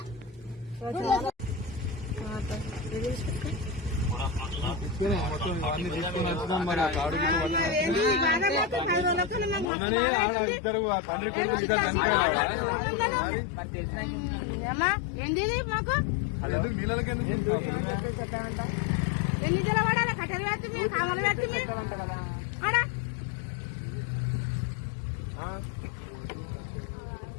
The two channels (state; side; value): drops out; right; at 9.7 s